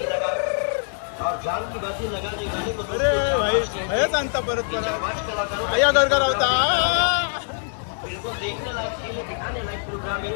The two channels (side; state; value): right; silent; 63 dB below the other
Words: अरे भाई हेच आणता परत परत. अय्या गरगर होता. बिल्कुल देखने लायक खेल है, दिखाने लायक प्रोग्राम आहे.